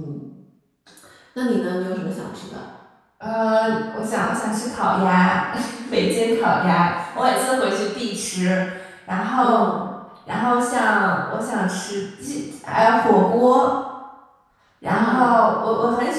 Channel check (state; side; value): identical; both; correlation 1.00